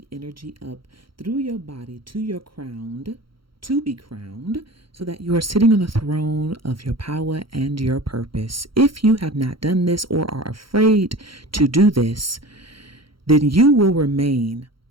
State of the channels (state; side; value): late; left; 0.74 ms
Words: energy up through your body to your crown, to be crowned, so that you are sitting on the throne of your power and your purpose. If you have not done this or are afraid to do this, then you will remain